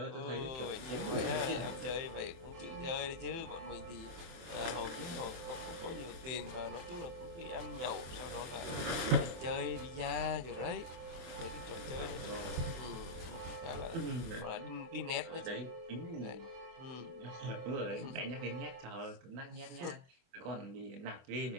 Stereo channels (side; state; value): left; late; 24 ms